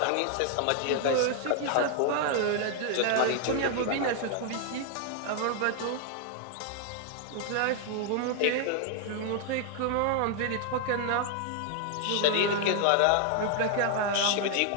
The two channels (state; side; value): different; both; correlation 0.00